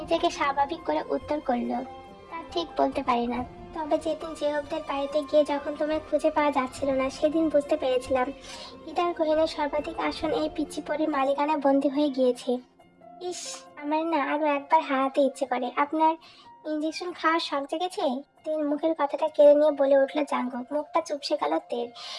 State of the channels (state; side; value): identical; both; correlation 1.00